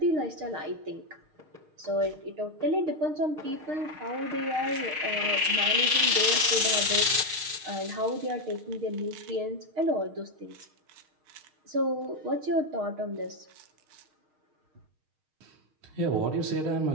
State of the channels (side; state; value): left; late; 6.5 ms